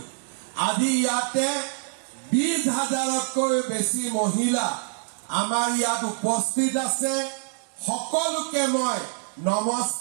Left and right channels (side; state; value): left; silent; 59 dB below the other